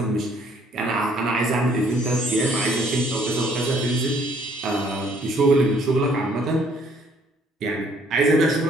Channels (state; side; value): normal; both; correlation 0.62